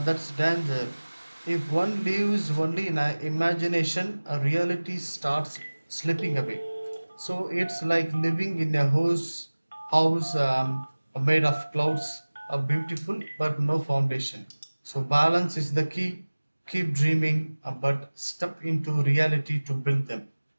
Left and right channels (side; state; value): both; inverted; correlation -1.00